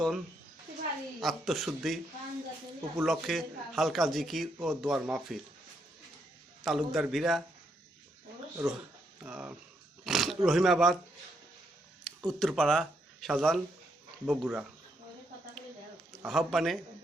আত্মশুদ্ধি উপলক্ষে হালকা জিকির ও দোয়ার মাহফিল। তালুকদার ভিরা, রহিমাবাদ, উত্তরপাড়া, শাহজাহান, বগুড়া। আহ্বানে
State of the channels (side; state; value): both; normal; correlation 0.77